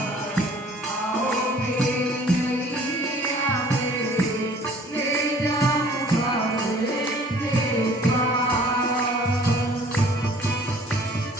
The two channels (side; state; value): both; normal; correlation 0.53